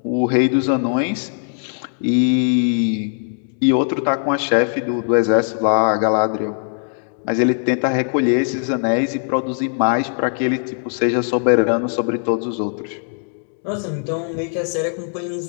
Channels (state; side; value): silent; right; digital silence